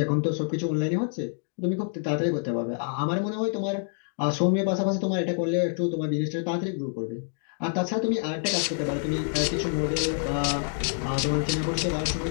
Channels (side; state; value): right; silent; 60 dB below the other